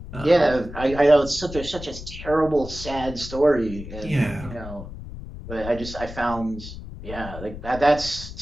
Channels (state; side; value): noise; left; rumble, 11 dB below the sound